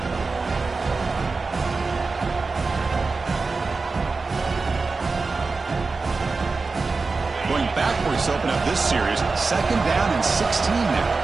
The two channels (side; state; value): left; quieter; 4.1 dB